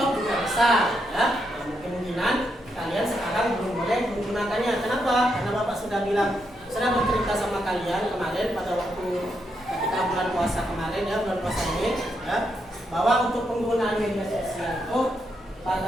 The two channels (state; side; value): normal; both; correlation 0.81